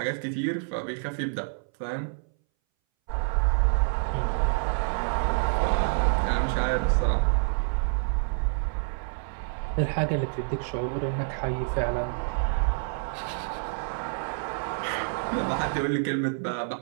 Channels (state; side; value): silent; left; 60 dB below the other